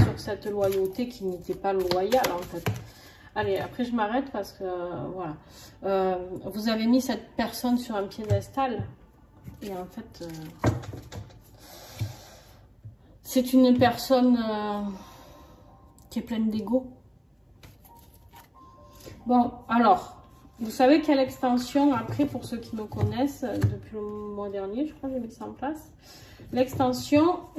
cette loyauté qui n'était pas loyale, en fait. Allez, après je m'arrête parce que, voilà, vous avez mis cette personne sur un piédestal, et en fait, c'est une personne qui est pleine d'ego. Bon, alors, vous savez quelle extension, après, pour ceux qui me connaissent, depuis le mois dernier, je crois que j'ai mis ça en place. L'extension,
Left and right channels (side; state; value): both; identical; correlation 1.00